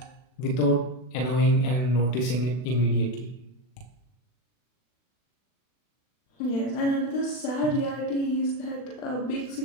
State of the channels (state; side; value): late; right; 40 ms